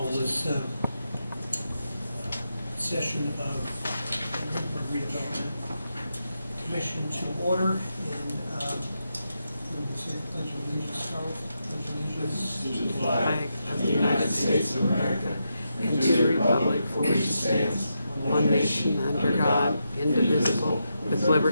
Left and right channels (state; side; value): inverted; both; correlation -0.85